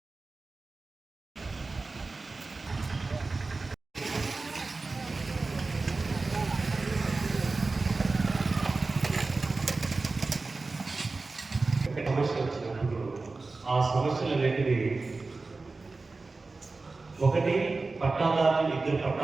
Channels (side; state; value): left; quieter; 3.7 dB